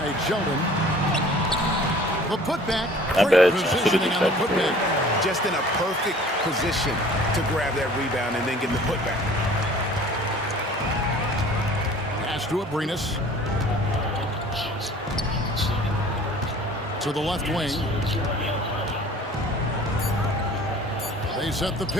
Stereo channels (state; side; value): normal; both; correlation 0.49